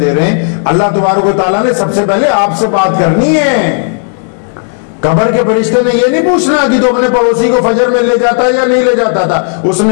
رہے ہیں۔ اللہ تبارک و تعالیٰ نے سب سے پہلے آپ سے بات کرنی ہے۔ قبر کے فرشتے نے یہ نہیں پوچھنا کہ تو اپنے پڑوسی کو فجر میں لے جاتا یا نہیں لے جاتا تھا، اس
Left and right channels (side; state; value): right; silent; 65 dB below the other